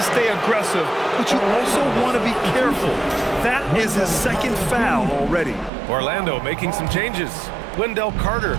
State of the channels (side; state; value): left; drops out; at 5.7 s